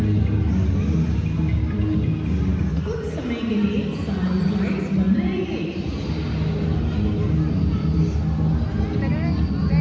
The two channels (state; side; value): identical; both; correlation 1.00